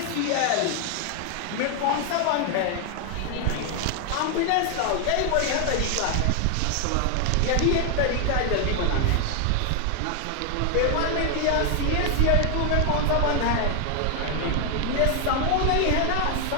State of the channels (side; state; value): both; different; correlation 0.00